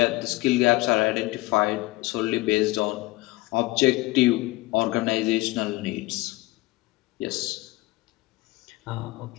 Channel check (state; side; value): quieter; right; 20.6 dB